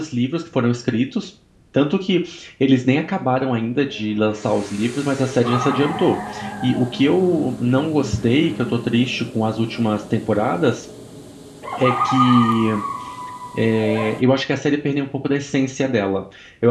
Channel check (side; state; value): both; identical; correlation 1.00